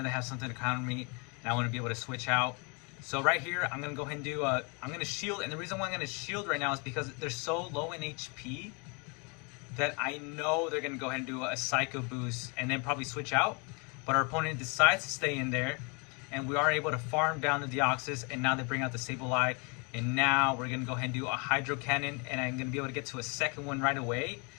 something to counter me and I want to be able to switch out. So right here, I'm gonna go ahead and do, I'm gonna shield, and the reason why I'm gonna shield right now is because they're so low in HP that I know they're gonna go ahead and do a Psycho Boost and then probably switch out. But our opponent decides to stay in there, and we are able to farm down the Deoxys, and now they bring out the Sableye, and now we're gonna go ahead and do a Hydro Cannon, and I'm gonna be able to get to a second one right away.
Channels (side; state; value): right; quieter; 32.7 dB